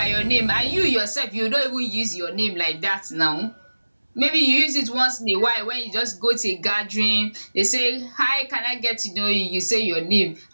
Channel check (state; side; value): inverted; both; correlation -1.00